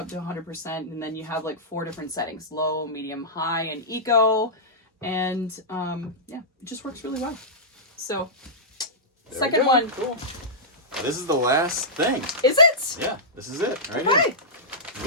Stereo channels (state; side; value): normal; both; correlation -0.14